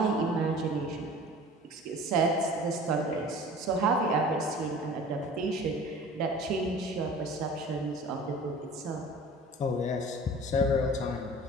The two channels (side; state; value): both; normal; correlation 0.43